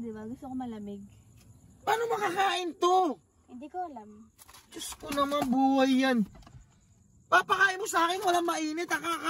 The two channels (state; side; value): identical; both; correlation 1.00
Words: ba? Gusto ko malamig. Paano makakain to? Hindi ko alam. Diyos ko naman, buhay yan. Papakain mo sa akin, walang mainit.